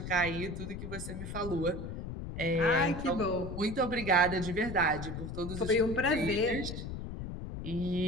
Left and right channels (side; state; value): left; noise; rumble, 7 dB below the sound